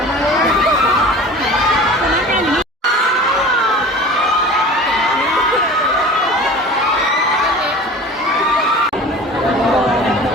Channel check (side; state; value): both; normal; correlation 0.39